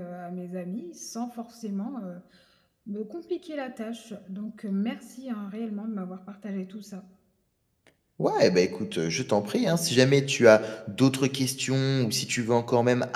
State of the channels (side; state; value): both; identical; correlation 1.00